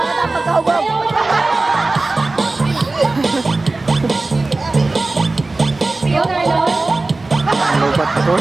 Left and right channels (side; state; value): left; quieter; 3.3 dB